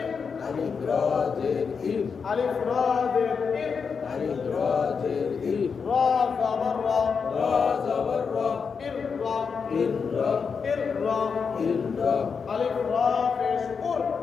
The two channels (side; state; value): right; quieter; 5.8 dB